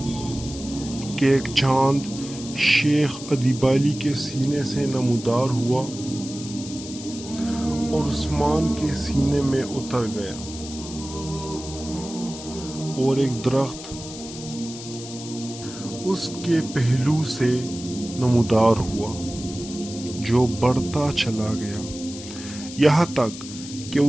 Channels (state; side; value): noise; left; hiss, 12 dB below the sound